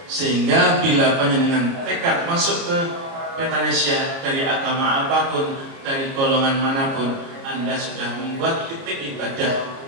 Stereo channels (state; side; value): late; left; 29 ms